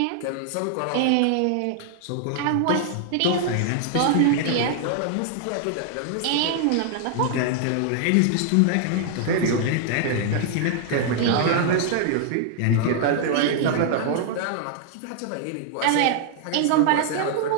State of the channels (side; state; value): both; different; correlation 0.00